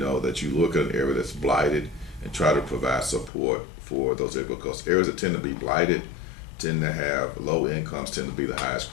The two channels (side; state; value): right; drops out; at 3.3 s